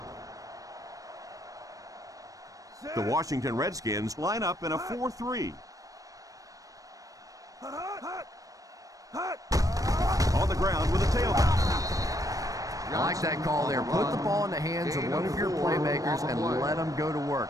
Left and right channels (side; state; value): left; late; 0.16 ms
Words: The Washington Redskins line up in a 4-3. On the ground with a tailback. I like that call there. Put the ball in the hands of one of your playmakers and let them go to work.